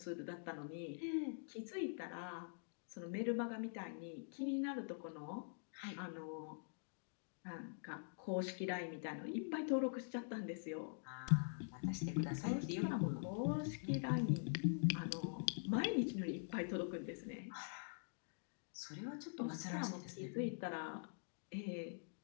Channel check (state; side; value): silent; right; digital silence